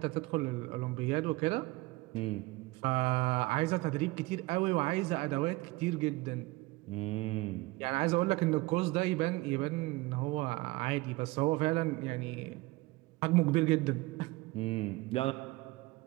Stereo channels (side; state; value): left; quieter; 21.7 dB